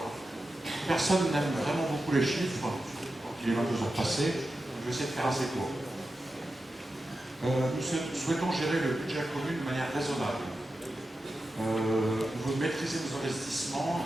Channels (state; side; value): normal; both; correlation 0.91